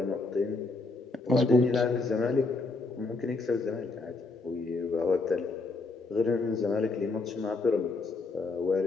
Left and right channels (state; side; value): quieter; right; 3.6 dB